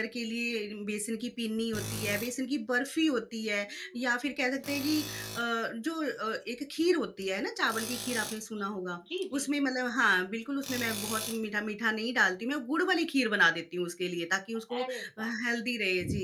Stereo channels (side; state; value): both; identical; correlation 1.00